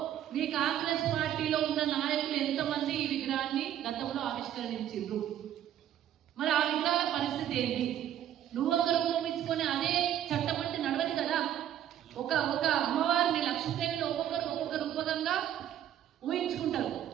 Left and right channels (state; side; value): quieter; left; 11.1 dB